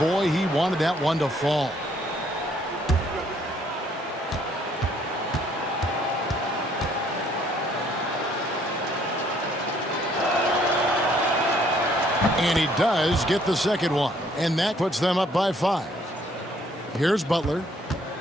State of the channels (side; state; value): both; normal; correlation 0.64